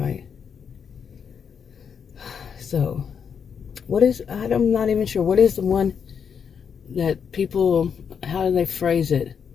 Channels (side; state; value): right; quieter; 7.0 dB